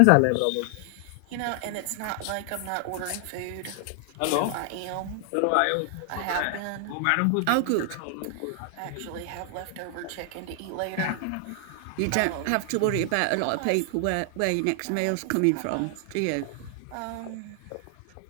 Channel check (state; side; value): different; both; correlation 0.00